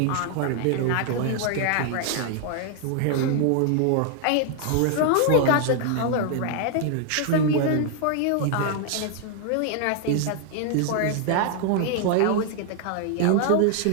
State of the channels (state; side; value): different; both; correlation 0.00